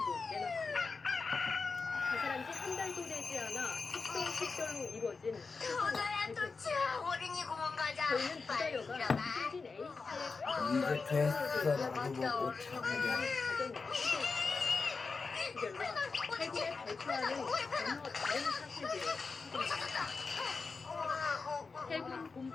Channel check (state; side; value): quieter; right; 4.5 dB